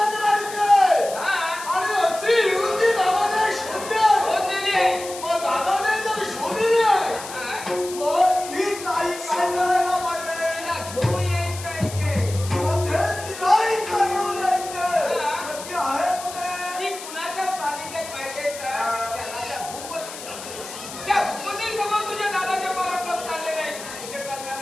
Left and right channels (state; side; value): noise; left; hiss, 12 dB below the sound